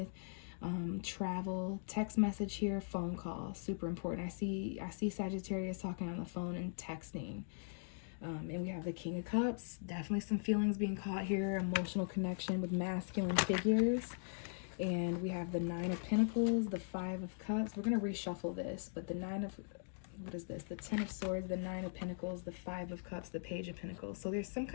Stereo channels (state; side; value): silent; right; digital silence